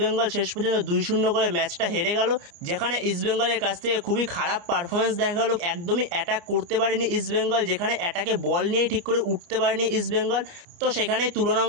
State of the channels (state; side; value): late; left; 29 ms